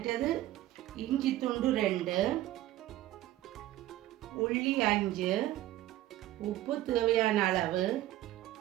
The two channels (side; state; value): left; quieter; 14.8 dB